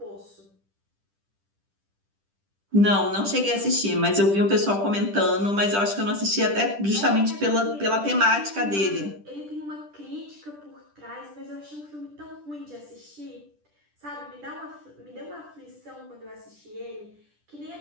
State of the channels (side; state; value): left; late; 10 ms